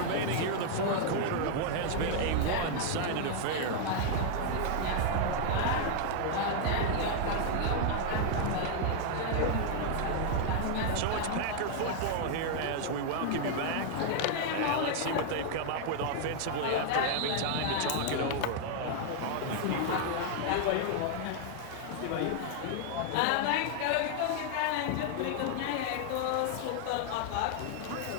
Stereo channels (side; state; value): both; different; correlation 0.00